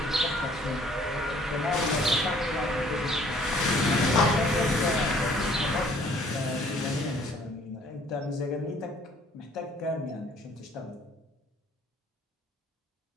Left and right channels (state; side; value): normal; both; correlation 0.58